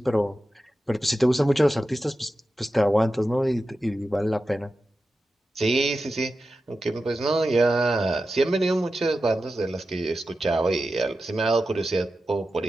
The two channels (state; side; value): normal; both; correlation 0.92